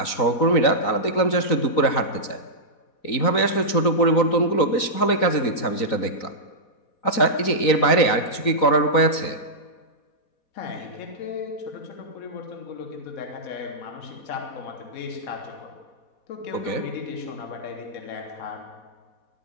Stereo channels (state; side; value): late; right; 3.9 ms